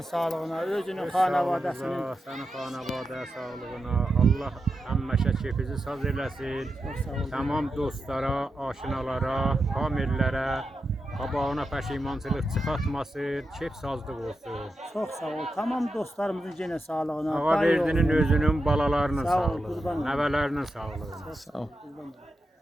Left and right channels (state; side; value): normal; both; correlation 0.88